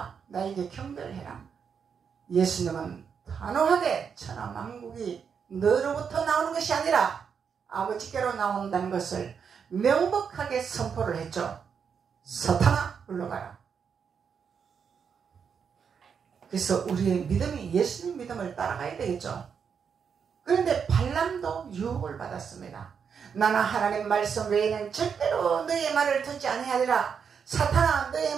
나에게 경배해라. 예수님은 단호하게 천하만국이 너로부터 나오는 것이 아니라 아버지께로 나온다는 것을 명백하게 선포를 했죠. 사탄아 물러가라. 그래서 우리의 믿음이 예수님 믿음을 따라가야 되겠죠. 그런데 발람도 유혹을 받았습니다. 나는 하나님 말씀 외에는 절대로 너의 말을 듣지 아니하리라. 사탄아 너의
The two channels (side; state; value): left; quieter; 6.7 dB